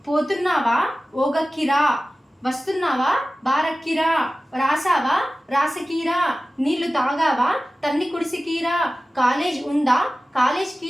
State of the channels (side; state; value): both; normal; correlation 0.96